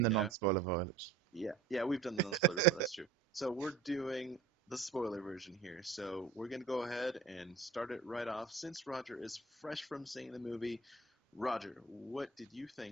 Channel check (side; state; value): left; quieter; 5.1 dB